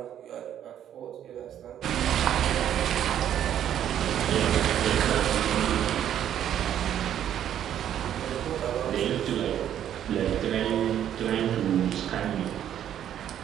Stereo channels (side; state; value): left; quieter; 10.4 dB